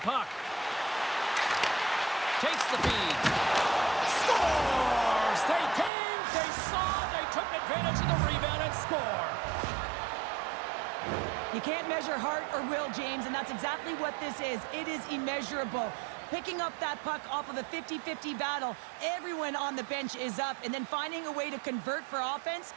puck. Takes the feed. Scores! They came, they saw, they took advantage of the rebound and score. You can't measure heart or will, James, and that's exactly what this is. It is immeasurable. Picking up that puck off of a 50-50 battle, everyone on the bench is up, and then finding a way to convert for offense,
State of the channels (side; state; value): left; drops out; at 5.9 s